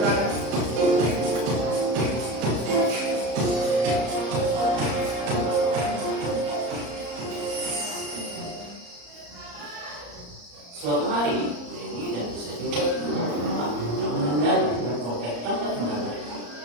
belakang. Suatu hari, Dewi dan bisa juga rumah yang menandai dan komplek tanpa tinggal mereka.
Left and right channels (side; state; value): left; late; 34 ms